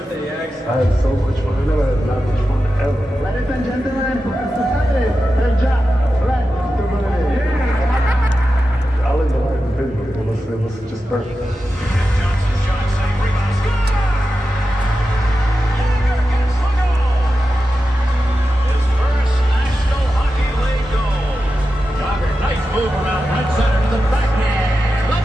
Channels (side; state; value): both; normal; correlation 0.91